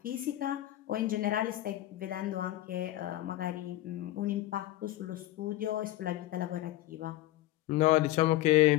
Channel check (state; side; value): quieter; right; 15.6 dB